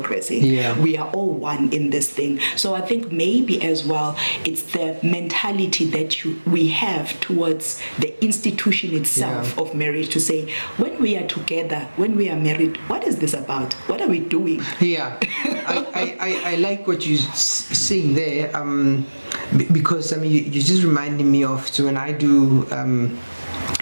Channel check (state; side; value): inverted; both; correlation -1.00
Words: We are all one in this thing. So I think maybe as well, it's the mentality that we have towards the institution itself of marriage, to say, when we are together, when we are married, what is this about? What are we doing? I like what you're saying there, because I mean, you just reminded me of, so when I do